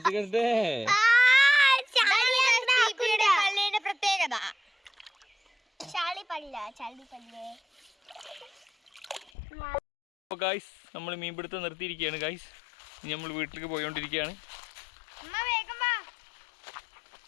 ഗൈസ് നമ്മൾ മീൻപിടുത്തം നിർത്തിയിരിക്കുകയാണ് ഗൈസ്. ഇനി നമ്മൾ വീട്ടിലേക്ക് പോയിക്കൊണ്ടിരിക്കുകയാണ്.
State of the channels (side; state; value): right; drops out; at 9.3 s